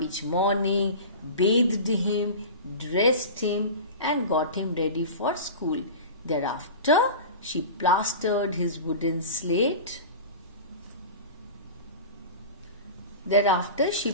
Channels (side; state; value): both; inverted; correlation -0.32